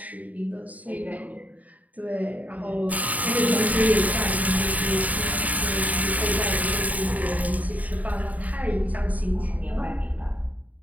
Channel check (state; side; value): late; left; 0.072 ms